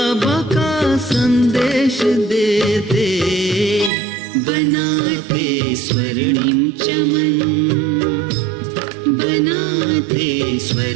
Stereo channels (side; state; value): left; drops out; at 3.9 s